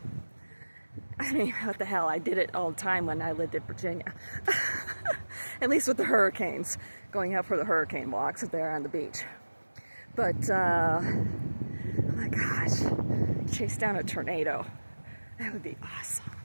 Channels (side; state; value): both; inverted; correlation -1.00